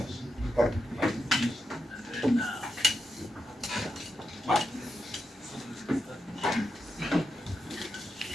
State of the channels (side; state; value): both; normal; correlation 0.86